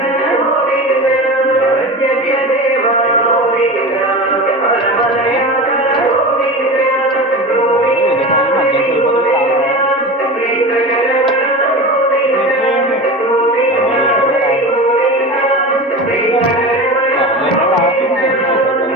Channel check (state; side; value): normal; both; correlation 0.29